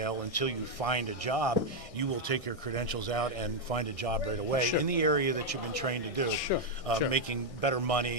until you find a job. You will take your credentials out and find a job right away in the area that you've been trained to do, making better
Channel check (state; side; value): late; right; 1.6 ms